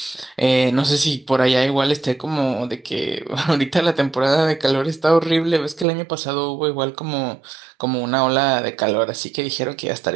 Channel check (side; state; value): left; drops out; at 5.9 s